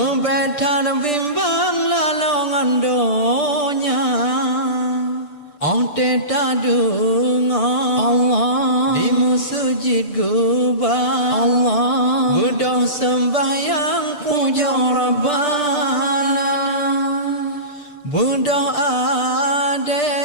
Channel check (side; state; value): right; late; 6.8 ms